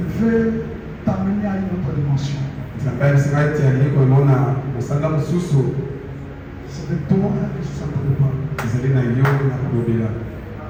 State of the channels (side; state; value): both; identical; correlation 1.00